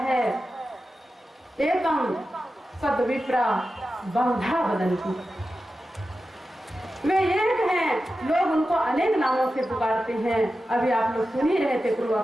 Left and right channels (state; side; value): normal; both; correlation 0.92